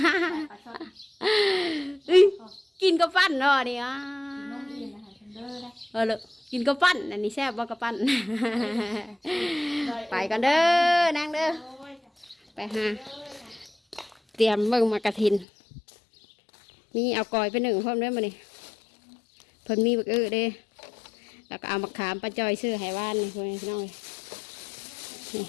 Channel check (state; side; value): drops out; right; at 15.5 s